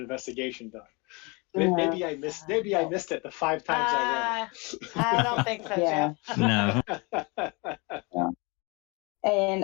done. Maybe I missed it the 5 times I read it. I don't think so, Yeah. Jeff. No.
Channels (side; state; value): right; quieter; 28.6 dB